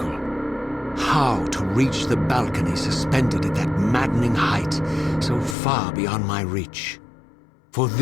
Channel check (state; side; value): drops out; right; at 5.6 s